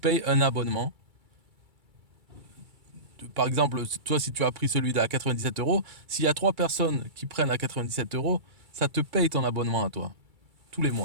un abonnement. Par exemple, toi, si tu as pris celui à 97 euros, s'il y a 3 personnes qui prennent à 97 euros, ça te paye ton abonnement à toi, tous les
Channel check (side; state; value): left; late; 2.3 ms